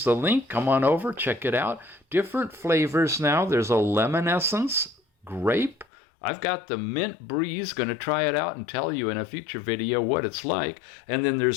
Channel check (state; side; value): drops out; right; at 5.9 s